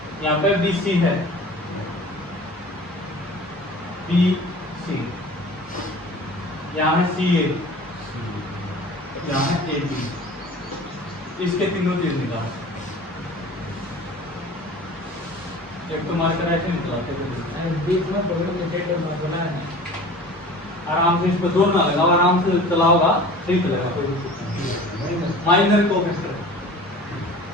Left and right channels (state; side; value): normal; both; correlation 0.41